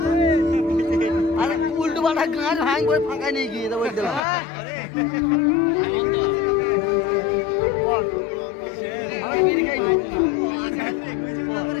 গান ভাঙ করে ফাঁকা নিয়ে গিয়ে দেবো দিলাম। বিড়ি খাইবি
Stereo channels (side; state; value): right; drops out; at 4.2 s